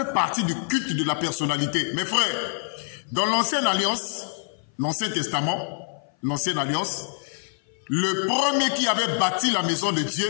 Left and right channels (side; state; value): right; silent; 57 dB below the other